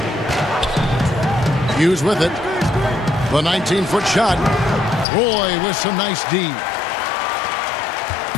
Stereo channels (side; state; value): right; drops out; at 5.1 s